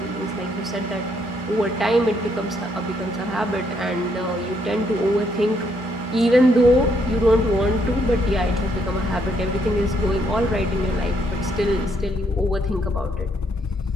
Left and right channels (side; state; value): both; normal; correlation 0.72